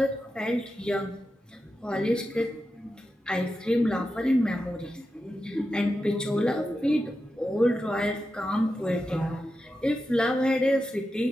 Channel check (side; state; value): both; normal; correlation 0.90